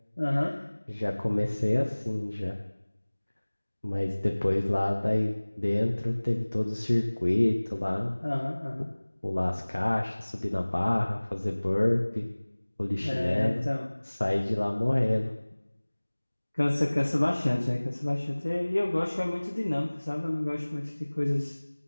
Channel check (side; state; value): both; inverted; correlation -1.00